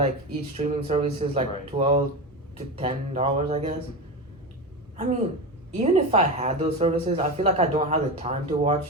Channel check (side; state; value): both; normal; correlation 0.21